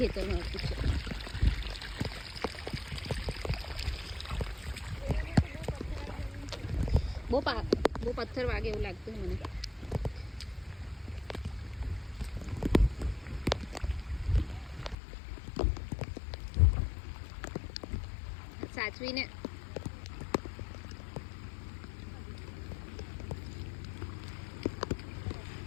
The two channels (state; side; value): drops out; right; at 15.0 s